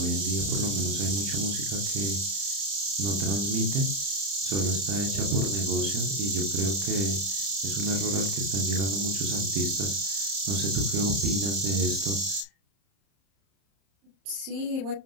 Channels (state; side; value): late; left; 30 ms